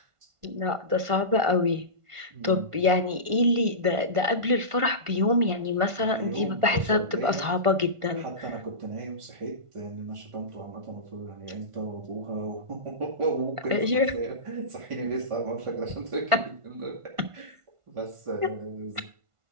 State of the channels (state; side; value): late; left; 1.5 ms